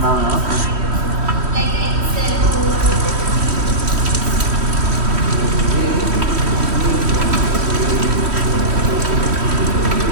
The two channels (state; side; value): late; left; 3.1 ms